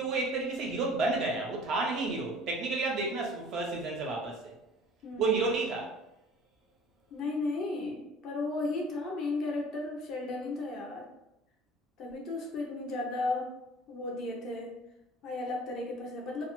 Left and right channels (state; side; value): normal; both; correlation 0.47